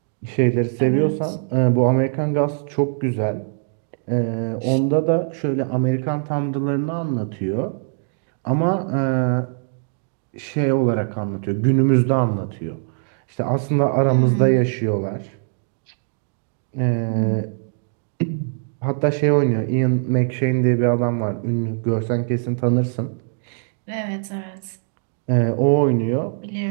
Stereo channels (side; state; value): left; silent; digital silence